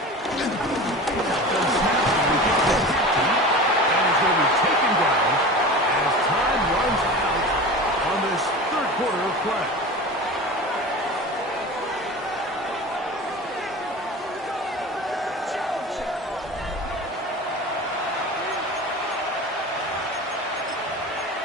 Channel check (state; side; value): normal; both; correlation 0.33